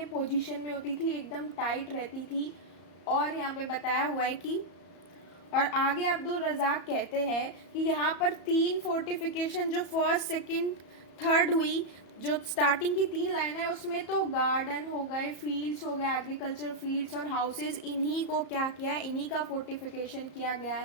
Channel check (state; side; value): late; right; 34 ms